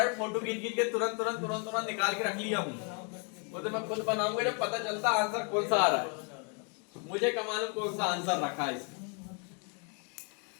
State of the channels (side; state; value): right; quieter; 37.7 dB